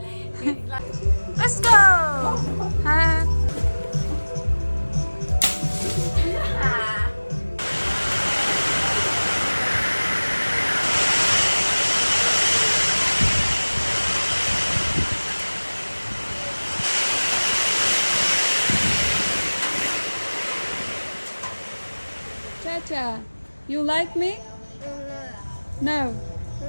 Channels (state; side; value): inverted; both; correlation -1.00